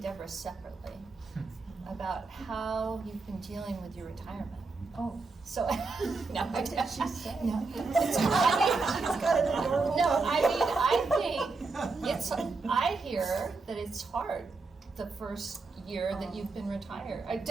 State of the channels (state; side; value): quieter; left; 4.0 dB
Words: separately about how you've been dealing with your retirement. Oh. So, no, what did she say? No. I hear that it's hard the first year that you've been retired.